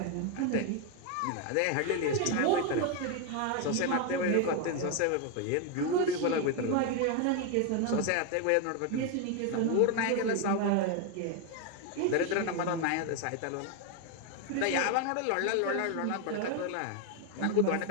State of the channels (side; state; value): both; different; correlation 0.01